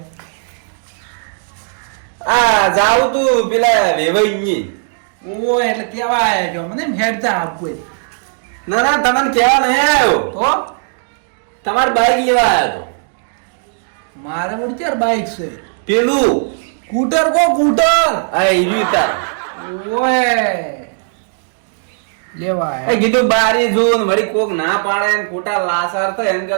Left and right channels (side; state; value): left; silent; digital silence